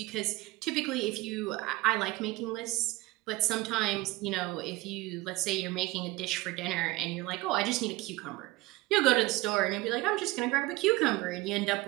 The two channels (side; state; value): left; quieter; 20.3 dB